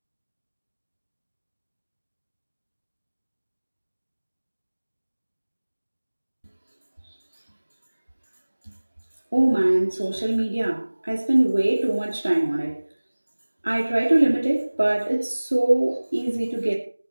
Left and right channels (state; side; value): inverted; both; correlation -1.00